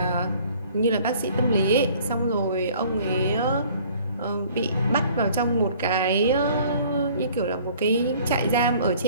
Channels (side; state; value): both; inverted; correlation -0.54